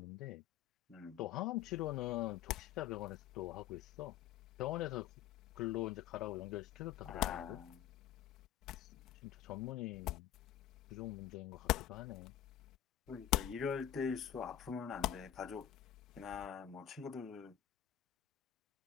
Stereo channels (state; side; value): quieter; right; 11.3 dB